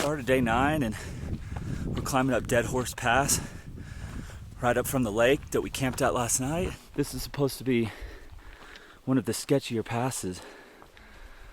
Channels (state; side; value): identical; both; correlation 1.00